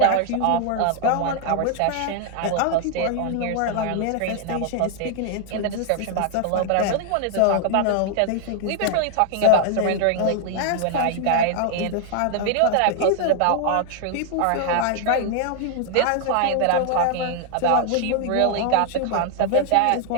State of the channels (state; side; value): different; both; correlation 0.00